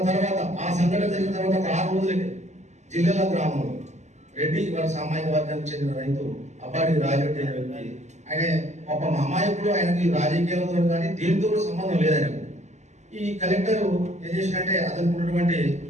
తర్వాత ఆ సంఘటన జరిగిన తర్వాత ఒక 6 రోజులకి జిల్లాల గ్రామంలో రెడ్డి వాళ్ళ సామాజిక వర్గానికి చెందిన రైతు అబ్బాడి రాజరెడ్డి అనే వ్యక్తి. ఆయన పాపం అమాయకుడు, ఆయనకి రాజకీయాలతో కానీ దేనితో కూడా సంబంధం లేదు ఆయనకు. ఈ కలెక్టర్ ఏం చేసినట్టే అతనికి ఉన్నటువంటి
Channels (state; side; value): late; left; 0.33 ms